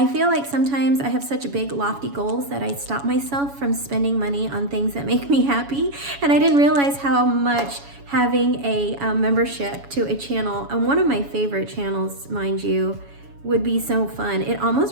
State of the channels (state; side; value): late; left; 7.1 ms